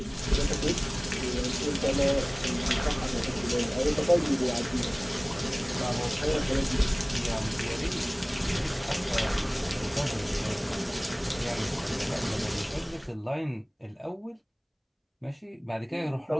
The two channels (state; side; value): identical; both; correlation 1.00